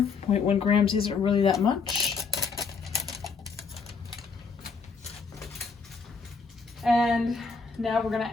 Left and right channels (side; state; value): right; quieter; 5.0 dB